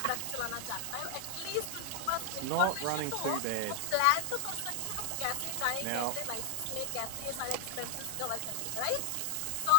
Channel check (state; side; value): different; both; correlation 0.00